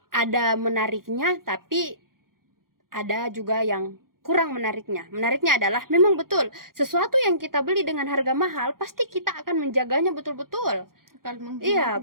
ada menariknya, tapi ada juga yang kurang menariknya. Menariknya adalah memang betul sesuatu yang kita beli dengan harga mahal pasti kita akan menjaganya betul-betul. Akan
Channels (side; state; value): left; late; 0.92 ms